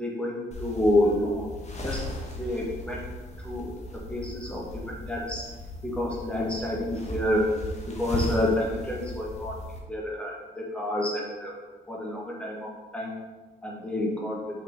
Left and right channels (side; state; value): both; normal; correlation 0.67